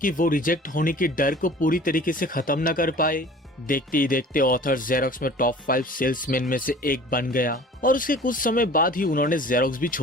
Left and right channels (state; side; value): normal; both; correlation 0.45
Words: वो रिजेक्ट होने के डर को पूरी तरीके से खत्म न कर पाए। देखते ही देखते ऑथर जेरोक्स में टॉप 5 सेल्समैन में से एक बन गया और उसके कुछ समय बाद ही उन्होंने जेरोक्स भी